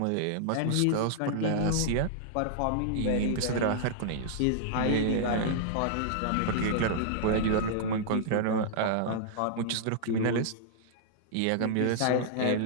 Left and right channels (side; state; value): both; different; correlation -0.02